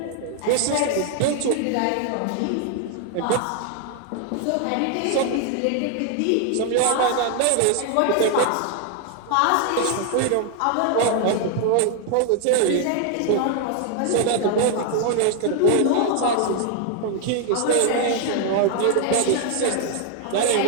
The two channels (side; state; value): both; different; correlation 0.00